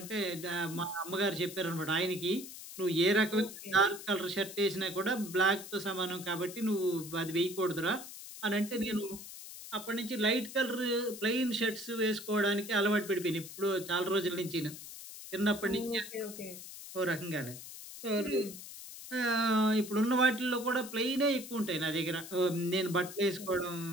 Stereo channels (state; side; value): noise; left; hiss, 12 dB below the sound